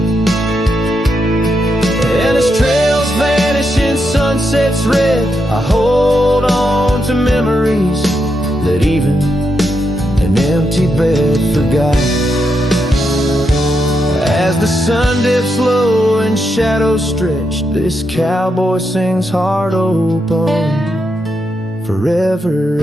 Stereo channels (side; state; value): both; normal; correlation 0.83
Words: And as trails vanish in sunsets red, I hold on to memories that even an empty bed forgot. As the sun dips low and shadows stretch, this cowboy sings heart open, forever